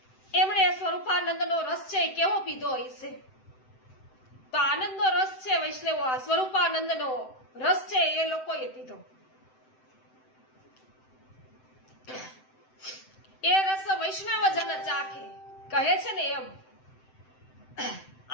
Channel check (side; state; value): right; late; 7.8 ms